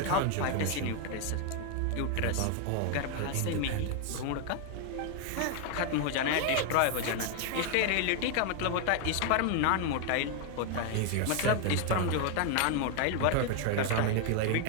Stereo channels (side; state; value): both; different; correlation 0.01